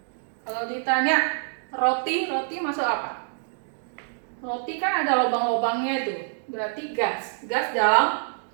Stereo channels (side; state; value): left; silent; digital silence